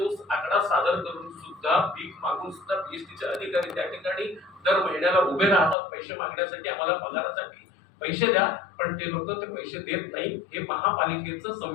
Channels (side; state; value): right; drops out; at 5.8 s